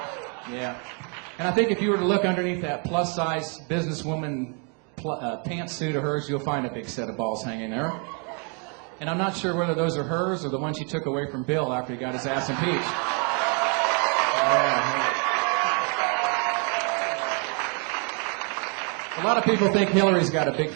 Yeah. And I think if you were to look underneath that plus-size businesswoman pantsuit of hers, you'll find a big set of balls hanging there. And I'm not sure whether those are hers or the ones she took away from Bill after he got his ass impeached. Yeah. A lot of people think Hillary's got a big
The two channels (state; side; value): quieter; left; 37.3 dB